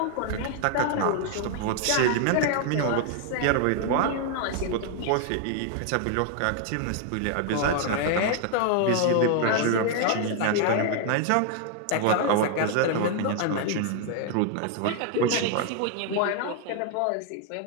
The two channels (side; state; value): both; different; correlation 0.00